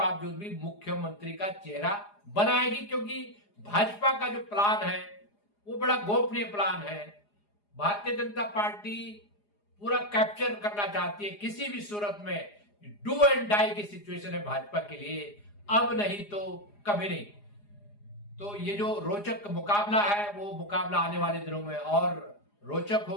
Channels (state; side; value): late; right; 4.9 ms